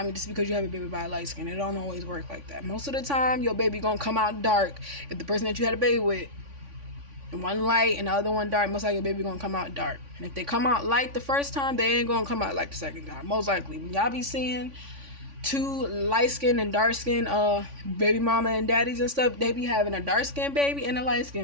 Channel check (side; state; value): left; late; 3.5 ms